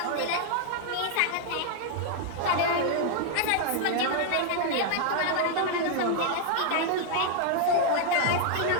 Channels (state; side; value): different; both; correlation 0.00